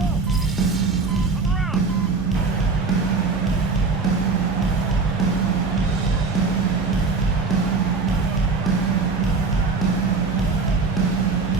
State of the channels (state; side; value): quieter; left; 4.2 dB